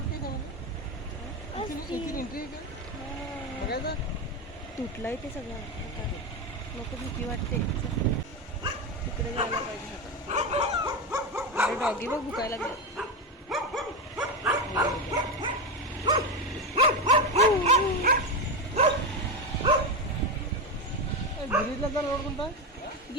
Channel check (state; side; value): normal; both; correlation 0.14